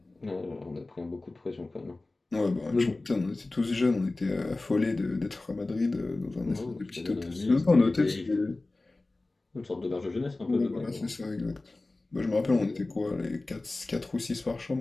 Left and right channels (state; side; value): quieter; right; 3.1 dB